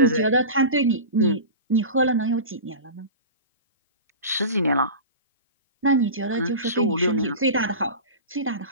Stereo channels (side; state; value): both; inverted; correlation -0.31